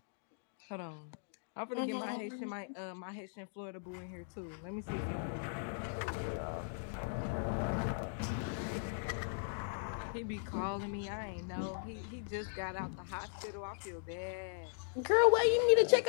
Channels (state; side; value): silent; right; digital silence